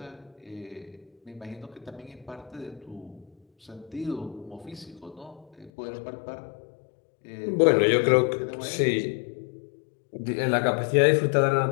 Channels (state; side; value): drops out; right; at 5.7 s